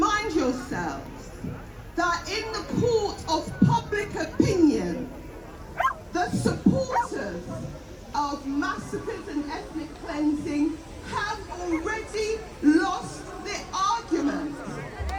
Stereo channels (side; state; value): both; identical; correlation 1.00